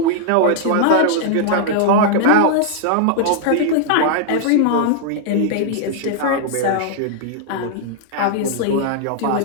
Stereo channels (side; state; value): both; different; correlation -0.01